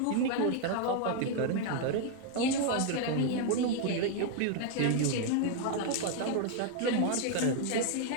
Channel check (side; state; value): both; different; correlation 0.00